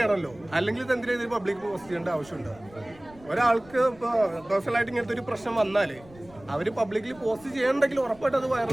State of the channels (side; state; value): left; noise; rumble, 23 dB below the sound